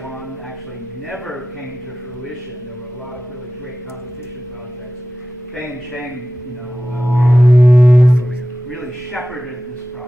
actually never came to fruition, there were a lot of really great competition projects. Fei and Cheng, really shepherded this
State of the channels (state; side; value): normal; both; correlation 0.94